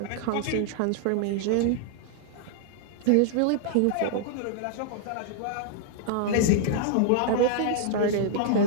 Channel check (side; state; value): both; different; correlation -0.01